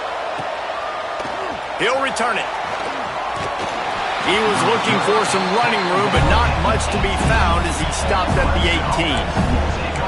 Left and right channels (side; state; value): both; identical; correlation 1.00